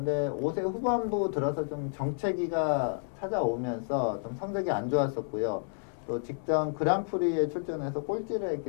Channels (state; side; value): silent; right; 58 dB below the other